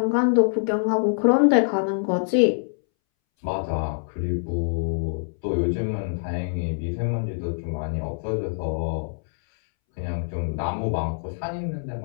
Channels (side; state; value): right; silent; 62 dB below the other